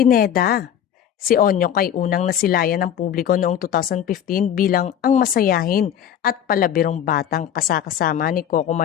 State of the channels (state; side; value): quieter; right; 9.7 dB